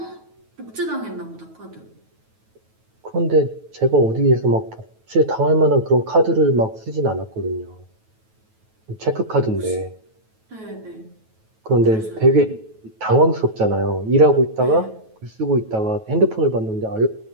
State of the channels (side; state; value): left; late; 9.2 ms